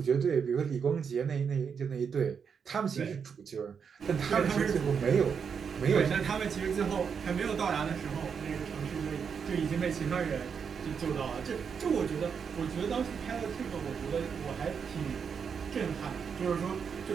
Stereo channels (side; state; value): left; quieter; 6.6 dB